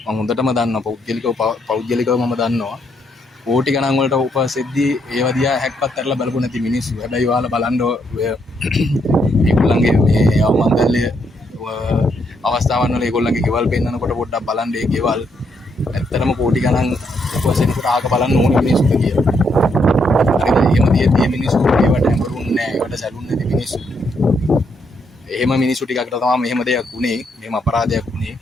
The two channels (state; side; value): normal; both; correlation 0.75